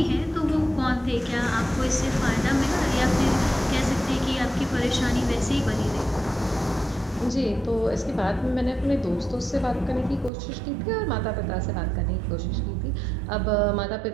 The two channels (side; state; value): left; drops out; at 10.3 s